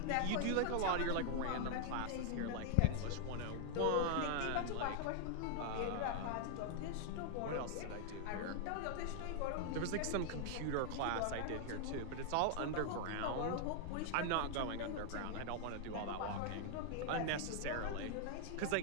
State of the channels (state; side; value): different; both; correlation 0.00